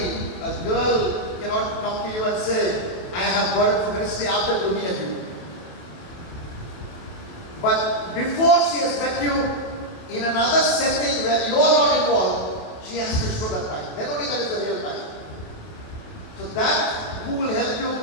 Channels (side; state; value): right; late; 27 ms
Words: a girl cannot come to you and say, I have burden for ministry after looking at you. But before she has met you in another setting where you are not involved, she has to show that passion. Then only that is the real passion. So that, who will help you